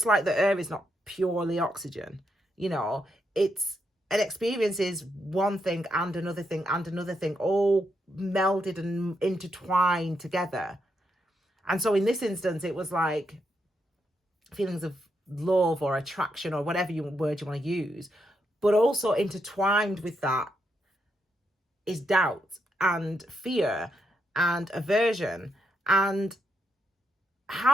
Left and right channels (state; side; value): normal; both; correlation 0.81